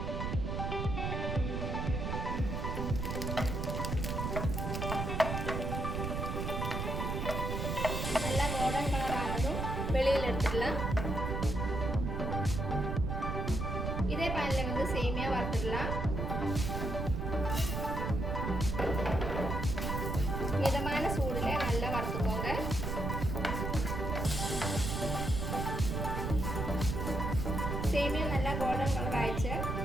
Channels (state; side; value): noise; right; rumble, 2 dB below the sound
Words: நல்லா கோல்டன் கலர் ஆனதும் வெளியில் எடுத்துடலாம். இதே பேனில் வந்து சேமியா வறுத்துடலாம். மிதமான சூடுல நல்லா வறுத்துக்கோங்க. சேமியா நல்லா கோல்டன் கலர் ஆயிடுச்சு.